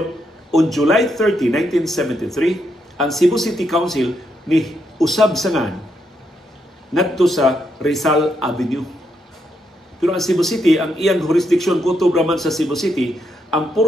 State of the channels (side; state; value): both; normal; correlation 0.79